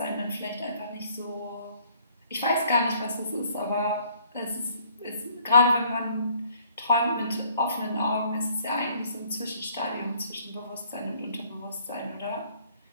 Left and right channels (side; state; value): both; inverted; correlation -0.61